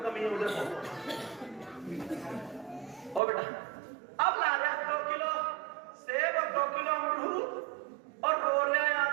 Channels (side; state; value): left; drops out; at 3.2 s